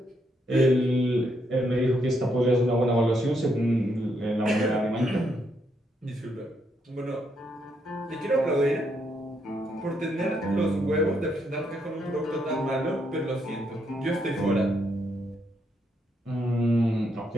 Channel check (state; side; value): normal; both; correlation 0.77